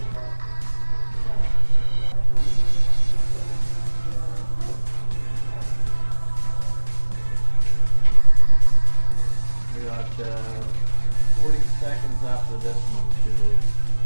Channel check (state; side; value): inverted; both; correlation -1.00